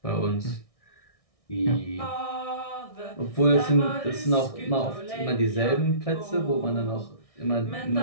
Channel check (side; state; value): right; late; 1.6 ms